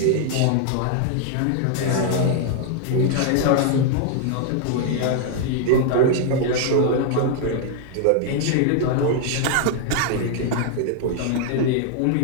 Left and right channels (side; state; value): both; different; correlation 0.00